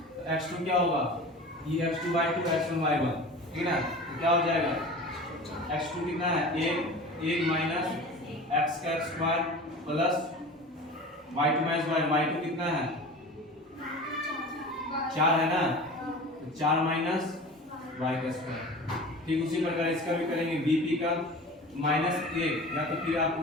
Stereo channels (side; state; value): both; normal; correlation 0.36